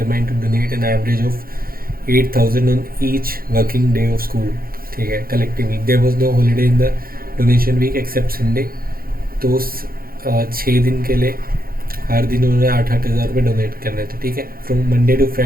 to donate an average of 8,000 on each working day of school. ठीक है, collectively there was no holiday in the donation week except Sunday. तो 6 दिन के लिए हर दिन उन्होंने 8,000 रुपये donate करने थे। ठीक है, from Monday to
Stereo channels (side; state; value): left; late; 0.42 ms